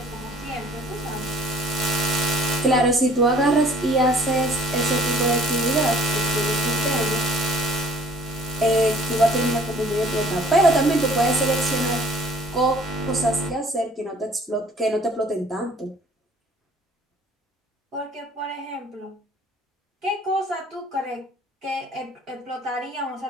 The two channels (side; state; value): both; normal; correlation 0.54